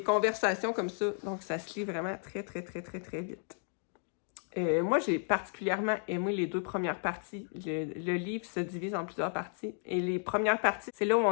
conversations comme ça, donc ça se lit vraiment très vite. Moi, j'ai particulièrement aimé les 2 premières parties. Le livre se divise en plusieurs parties. Et les premières parties, c'est là où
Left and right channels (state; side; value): silent; right; 56 dB below the other